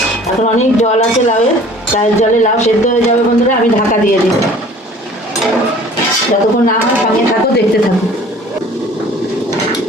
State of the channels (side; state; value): both; normal; correlation 0.49